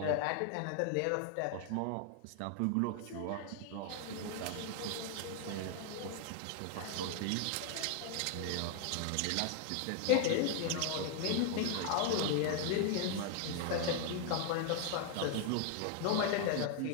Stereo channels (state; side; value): different; both; correlation 0.00